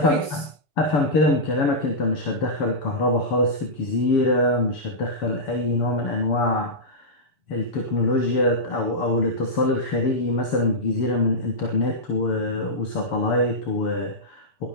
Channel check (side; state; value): right; late; 7.0 ms